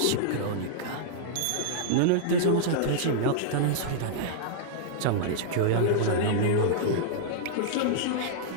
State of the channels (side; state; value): both; different; correlation -0.02